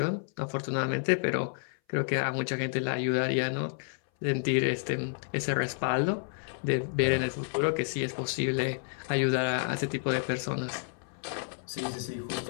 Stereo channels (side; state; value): right; silent; 57 dB below the other